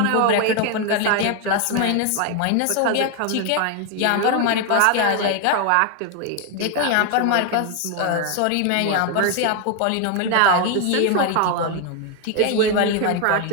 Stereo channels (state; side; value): different; both; correlation 0.01